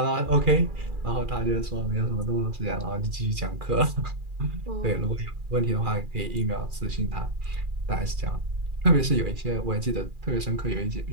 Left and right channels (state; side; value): late; left; 2.4 ms